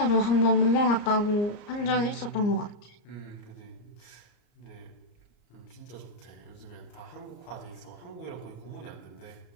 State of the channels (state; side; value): late; right; 34 ms